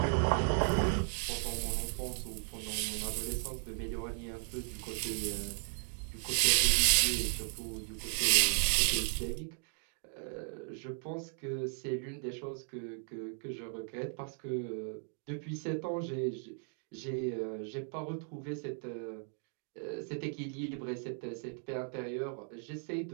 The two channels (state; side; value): silent; left; 54 dB below the other